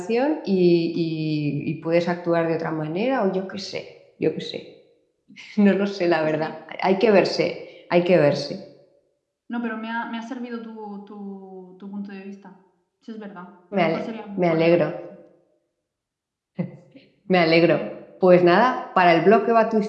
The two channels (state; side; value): identical; both; correlation 1.00